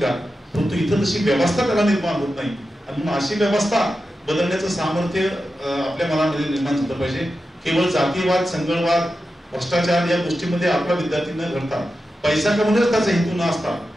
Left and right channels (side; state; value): both; normal; correlation 0.91